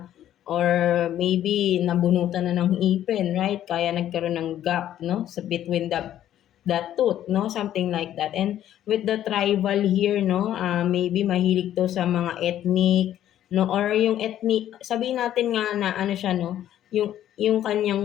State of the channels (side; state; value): right; quieter; 11.7 dB